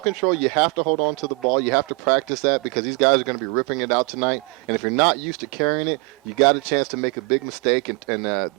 you have to hold on to the ball. You have to practice that because these guys are going to be ripping it out tonight. And if you're not used to carrying it, you got a chance to make a big mistake, and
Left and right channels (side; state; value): left; quieter; 29.9 dB